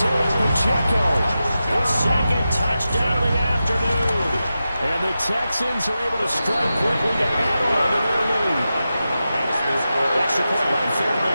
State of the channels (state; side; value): inverted; both; correlation -0.92